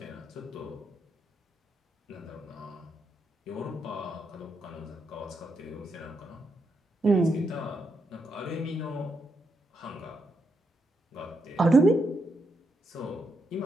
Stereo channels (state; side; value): normal; both; correlation 0.81